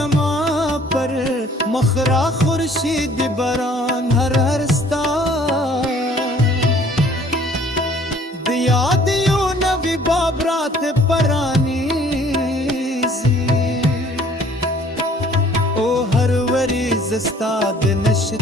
پر مخرا خورشید بران ہر ہرستا دیا دیو نوی بابرات پرانی زی او ہر وری زستاد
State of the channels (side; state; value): both; normal; correlation 0.56